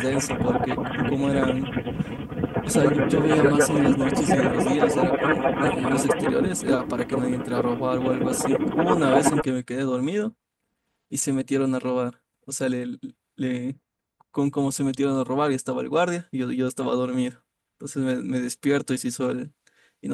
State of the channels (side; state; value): both; identical; correlation 1.00